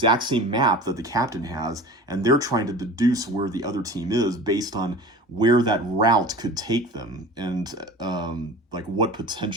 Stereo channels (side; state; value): both; normal; correlation 0.37